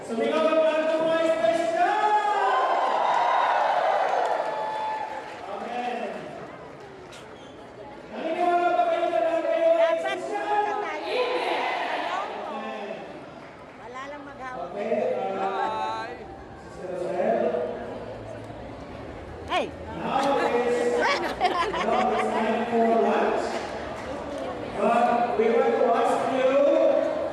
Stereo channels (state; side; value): identical; both; correlation 1.00